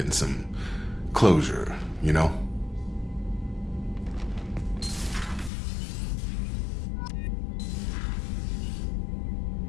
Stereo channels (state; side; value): drops out; right; at 5.5 s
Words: some closure, you know?